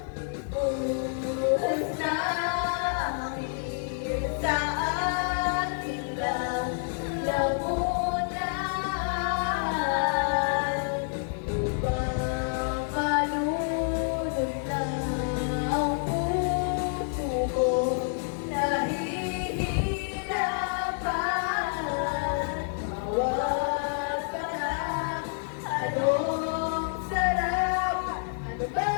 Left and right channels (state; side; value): silent; right; 59 dB below the other